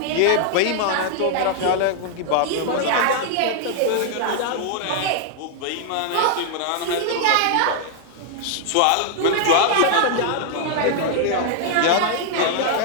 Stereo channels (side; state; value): both; different; correlation -0.01